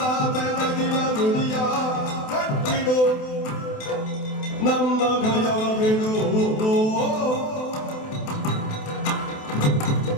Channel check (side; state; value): right; late; 28 ms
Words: ನಮ್ಮ ಭಯವ ಬಿಡು